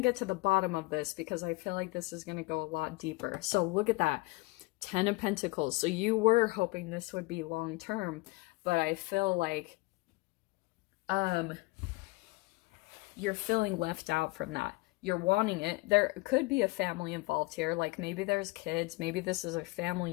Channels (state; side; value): quieter; right; 24.0 dB